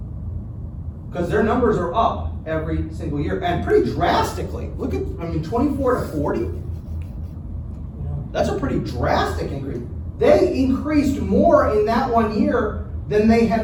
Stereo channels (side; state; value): both; identical; correlation 1.00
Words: Because their numbers are up every single year, and pretty drastically. Look at, 24 to 40? That's a pretty drastic increase. They increased more in that 1 year than they